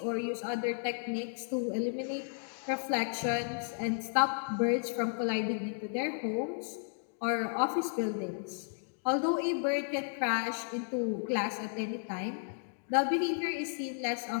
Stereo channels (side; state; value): right; silent; digital silence